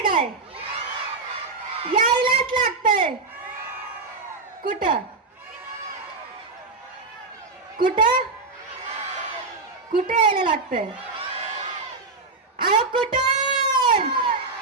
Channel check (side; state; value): left; quieter; 3.9 dB